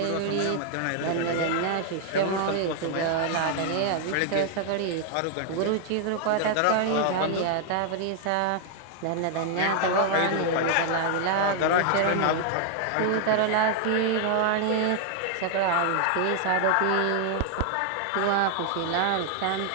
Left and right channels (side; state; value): both; different; correlation 0.00